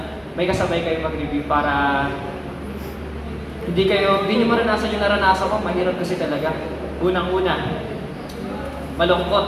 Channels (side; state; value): both; identical; correlation 1.00